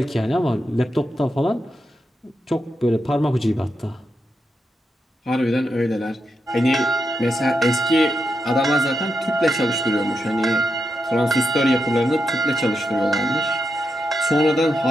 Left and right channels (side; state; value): both; normal; correlation 0.85